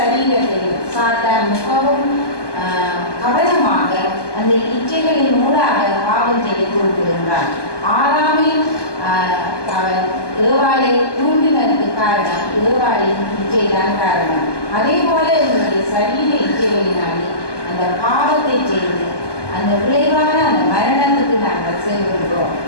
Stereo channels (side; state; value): right; late; 1.2 ms